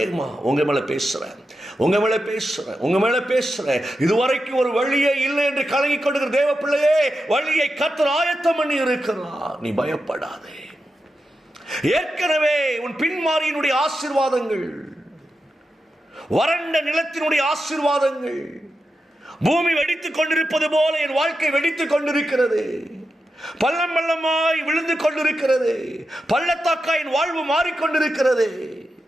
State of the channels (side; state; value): both; normal; correlation 0.89